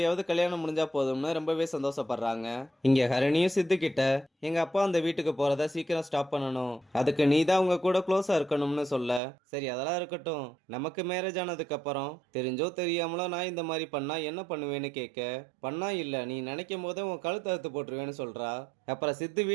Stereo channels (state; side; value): drops out; left; at 9.2 s